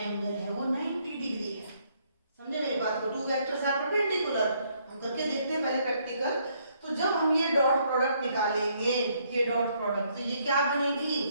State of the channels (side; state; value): both; inverted; correlation -0.70